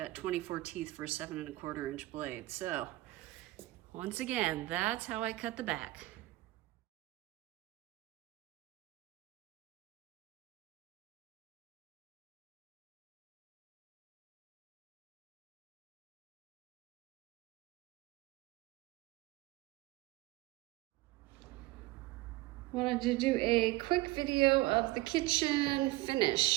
24 teeth for a 7 1/4 inch blade. So once again, that's how I cut the back. Wanted to do a quick video of the kitchen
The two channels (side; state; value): left; quieter; 18.8 dB